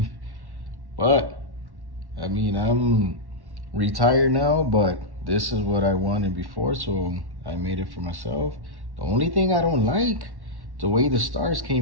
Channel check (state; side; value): late; left; 1.1 ms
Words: But, I mean, I'm retired now, but this is what I wanted before, so I made it for myself. The only thing I don't like, the way the stars